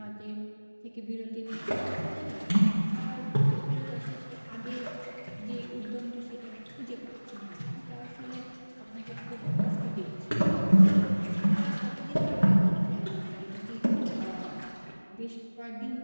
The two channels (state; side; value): inverted; both; correlation -1.00